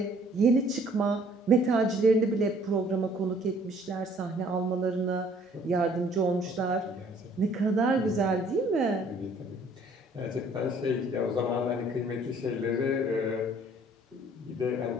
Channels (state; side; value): normal; both; correlation 0.58